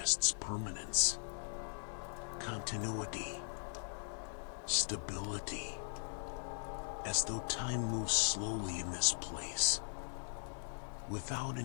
permanence, continuity, stability, as though time moves slowly in this place, without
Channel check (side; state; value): right; silent; digital silence